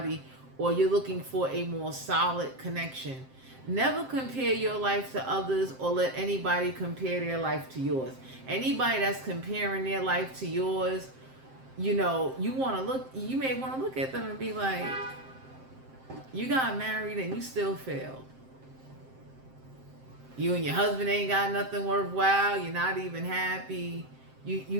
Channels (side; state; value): left; late; 7.6 ms